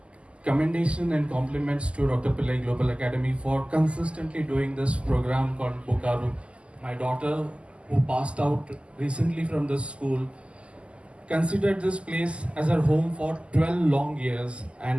commendation and compliments to Dr. Pillai Global Academy for consistently doing this program called Bokaru. My daughter, who passed out recently from this school, considered this place as her home for 12 long years,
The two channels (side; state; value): left; late; 0.055 ms